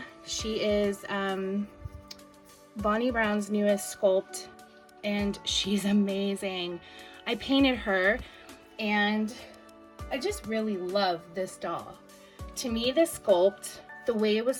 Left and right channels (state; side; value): identical; both; correlation 1.00